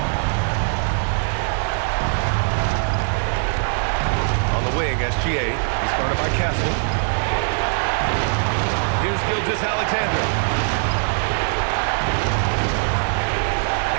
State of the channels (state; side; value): silent; left; digital silence